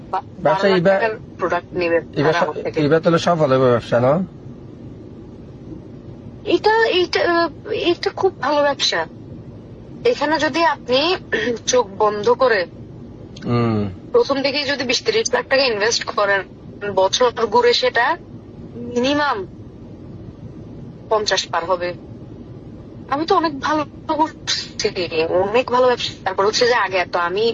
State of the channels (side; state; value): both; identical; correlation 1.00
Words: 12 লাখ টাকার প্রোডাক্ট নিবে আমার থেকে। এবার তাহলে সফল হবে ব্যবসা, না? এটা এটা এটা খুব ভালো ব্যবসা। এখানে যদি আপনি চোখ বন্ধ করে প্রথম দিকে যদি 20-30 লাখ টাকা ইনভেস্ট করেন, বছর ঘুরে সেটা মিনিমাম 50 পার হবে। আমি তো অনেক ভালো করছি, অনেক ভালো ব্যবসা। তারপর হচ্ছে যে আগে তো আমি